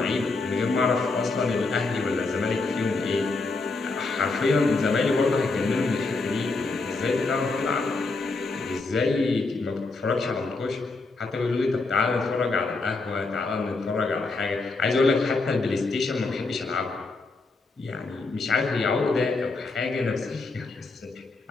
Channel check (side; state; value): right; quieter; 3.6 dB